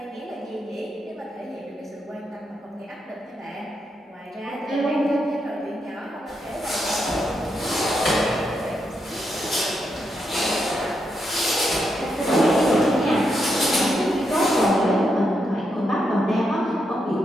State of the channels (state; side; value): normal; both; correlation 0.82